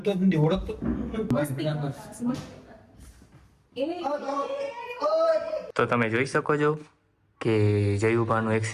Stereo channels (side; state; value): both; identical; correlation 1.00